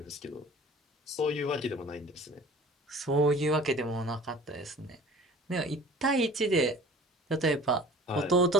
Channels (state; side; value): normal; both; correlation 0.45